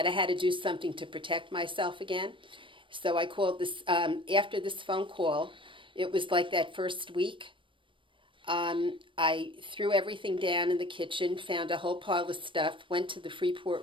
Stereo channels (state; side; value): late; left; 0.25 ms